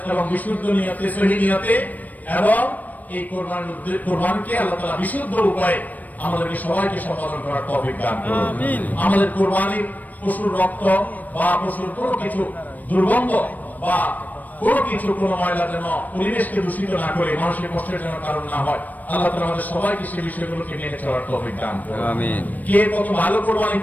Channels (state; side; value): late; right; 0.080 ms